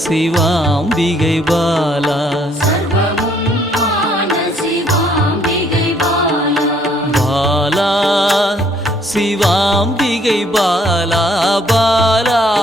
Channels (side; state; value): both; normal; correlation 0.65